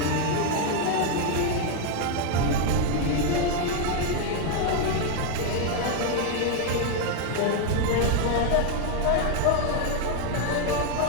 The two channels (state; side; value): different; both; correlation 0.01